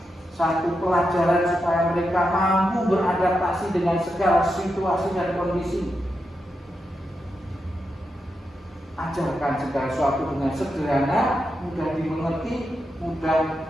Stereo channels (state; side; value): normal; both; correlation 0.86